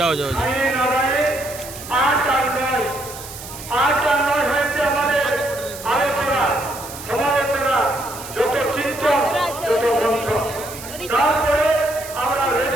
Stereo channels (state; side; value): noise; right; hiss, 13 dB below the sound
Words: যাও নারায়ণ 8 আর 9 হয়েছে আমাদের আলোচনা সমালোচনা যত চিন্তন যত মন্থন তারপরে আমরা